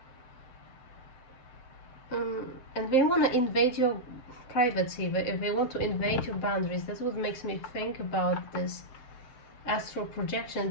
And they want to invade your privacy. If they want to invade your boundaries, that's what makes me think about this astral projection,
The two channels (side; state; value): right; late; 7.7 ms